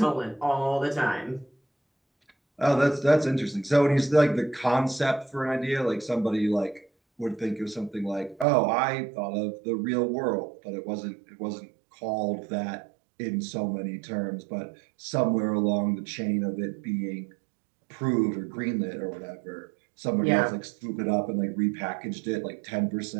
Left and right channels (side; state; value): left; drops out; at 8.5 s